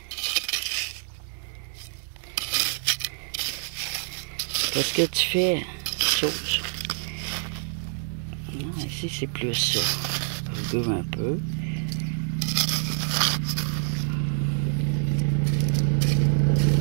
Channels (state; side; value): silent; left; digital silence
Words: Qu'est-ce que tu fais? Chose. Non, ici c'est plus ça. Rugueux un peu.